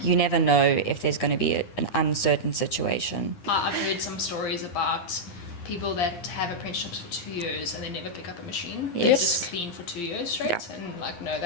you never know if there's going to be an uncertain situation. I've heard some stories about people that have apprenticeships for 2 years and they never pick up a machine. They just clean for 2 years straight. And like, no,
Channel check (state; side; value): late; right; 9.8 ms